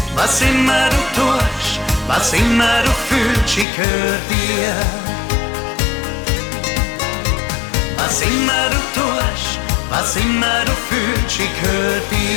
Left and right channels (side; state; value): right; drops out; at 3.7 s